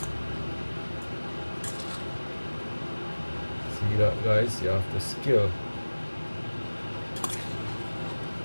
See that, guys? You have to skill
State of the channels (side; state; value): both; inverted; correlation -1.00